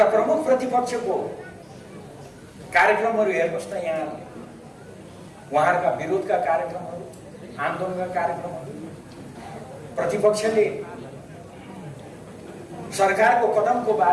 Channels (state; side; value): identical; both; correlation 1.00